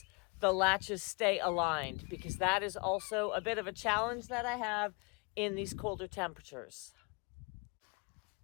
the latches stay aligned, because that is also a bit of a challenge that I have in these colder temperatures.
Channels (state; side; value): quieter; right; 31.0 dB